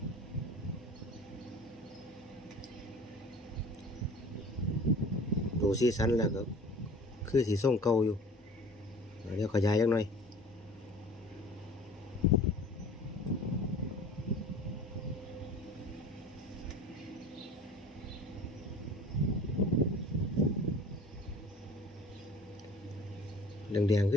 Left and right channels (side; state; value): both; normal; correlation 0.44